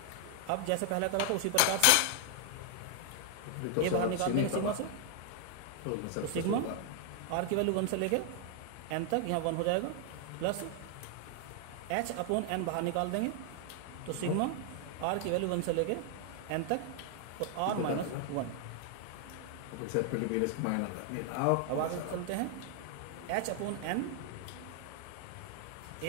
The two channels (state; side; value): different; both; correlation 0.00